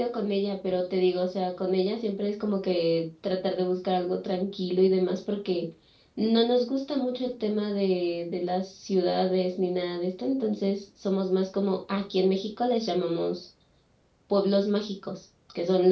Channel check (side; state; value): both; identical; correlation 1.00